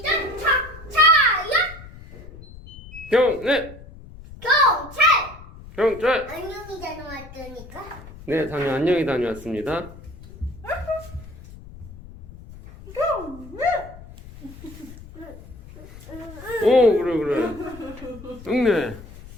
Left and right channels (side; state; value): left; noise; rumble, 17 dB below the sound